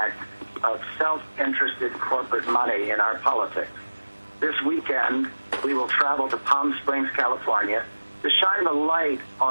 of self-interested corporate money in our politics. This weekend, we will travel to Palm Springs, California, to shine the light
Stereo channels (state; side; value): inverted; both; correlation -1.00